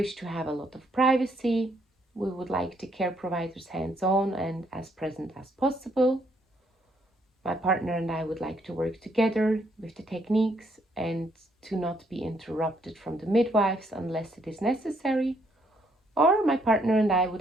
to have a lot of privacy. We would like the care providers hands-on and as present as possible. My partner and I would like to work together with the techniques and to not be interrupted from the midwives unless it is necessary. Or my partner and I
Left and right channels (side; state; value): both; normal; correlation 0.71